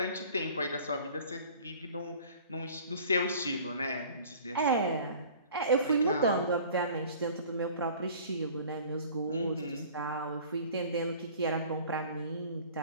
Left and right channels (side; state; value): both; inverted; correlation -0.47